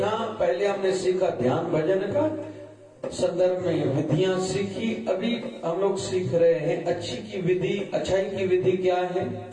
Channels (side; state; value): both; identical; correlation 1.00